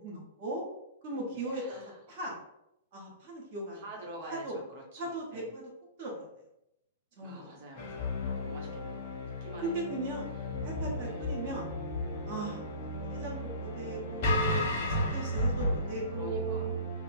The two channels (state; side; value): inverted; both; correlation -0.40